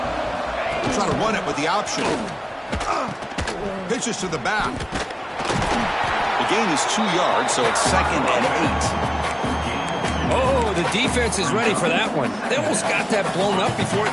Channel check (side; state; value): both; identical; correlation 1.00